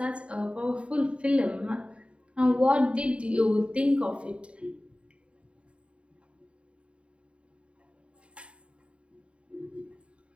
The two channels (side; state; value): left; late; 0.059 ms